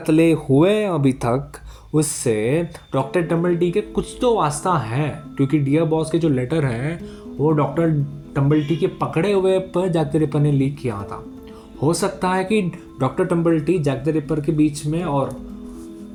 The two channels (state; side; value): identical; both; correlation 1.00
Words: हुए अभी तक उससे डॉक्टर टम्बल्टी के कुछ तो वास्ता है, क्योंकि डियर बॉस के जो लेटर है वो डॉक्टर टम्बल्टी के पकड़े हुए पर जैक द रिपर ने लीक किया था। हो सकता है कि डॉक्टर टम्बल्टी जैक द रिपर के बीच में, और